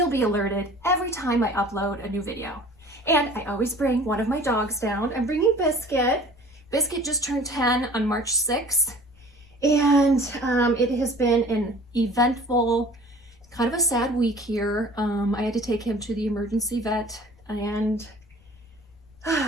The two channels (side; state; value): left; noise; rumble, 28 dB below the sound